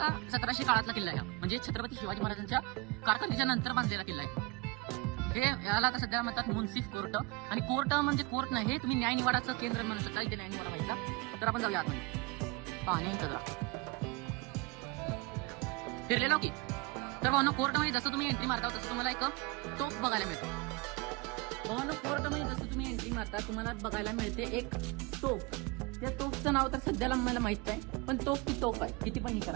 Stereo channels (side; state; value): left; quieter; 23.8 dB